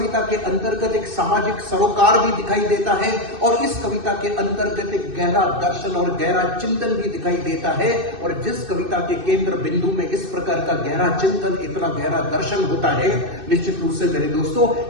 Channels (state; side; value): late; left; 2.6 ms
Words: के अंतर्गत एक सामाजिक सरोकार भी दिखाई देता है, और इस कविता के अंतर्गत एक गहरा दर्शन और गहरा चिंतन भी दिखाई देता है। और जिस कविता के केंद्र बिंदु में इस प्रकार का गहरा चिंतन, इतना गहरा दर्शन होता है, निश्चित रूप से मेरे दोस्तों